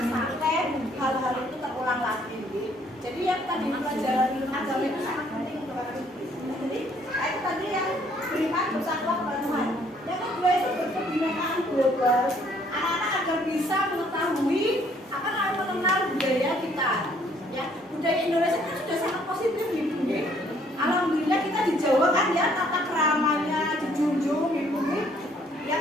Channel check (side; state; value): both; normal; correlation 0.64